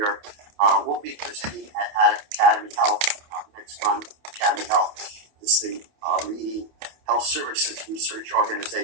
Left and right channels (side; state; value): left; late; 28 ms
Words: will be presenting at Academy Health next month. Academy Health is the leading health services research